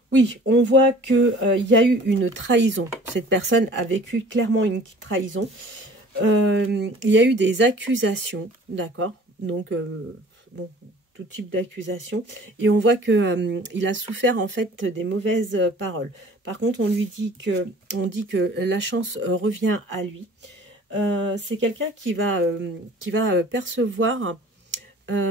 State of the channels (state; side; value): normal; both; correlation 0.48